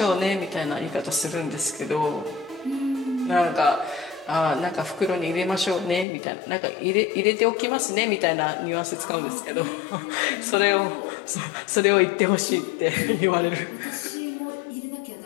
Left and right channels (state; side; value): drops out; right; at 6.1 s